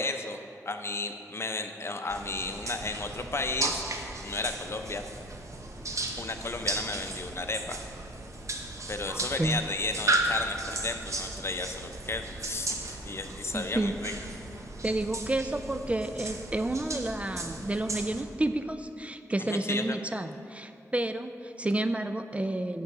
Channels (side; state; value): both; normal; correlation 0.50